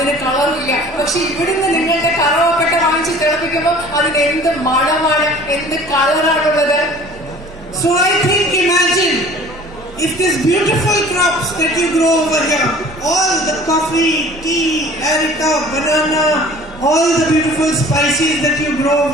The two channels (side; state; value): both; normal; correlation 0.47